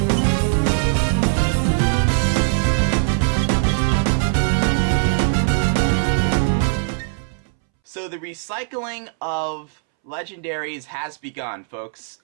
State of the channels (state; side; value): silent; left; 65 dB below the other